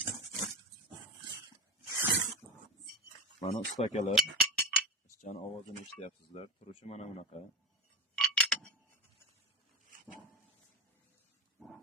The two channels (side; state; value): both; normal; correlation 0.22